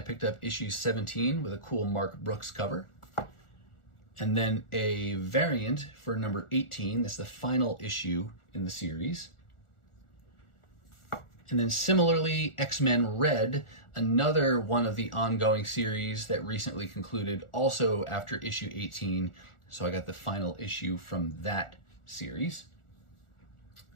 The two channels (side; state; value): right; late; 1.4 ms